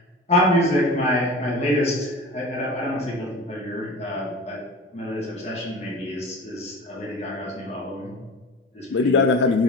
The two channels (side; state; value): both; normal; correlation 0.35